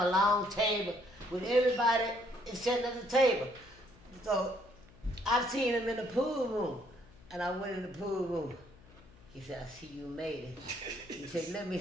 a long table with everybody sitting at the table. So, I've seen him in the pool room, and I went in the pool room. He said, I see you made it. He said, let me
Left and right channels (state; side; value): noise; left; hum, 24 dB below the sound